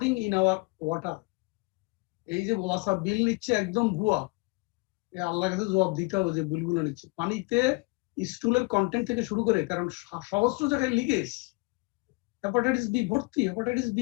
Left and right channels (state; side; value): quieter; right; 27.4 dB